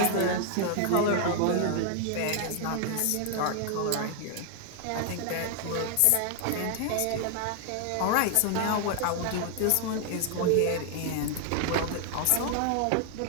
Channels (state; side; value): different; both; correlation 0.00